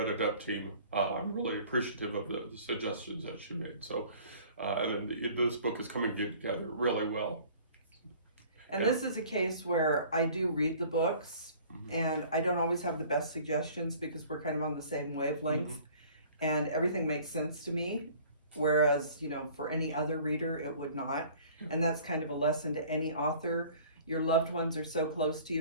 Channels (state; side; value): inverted; both; correlation -0.50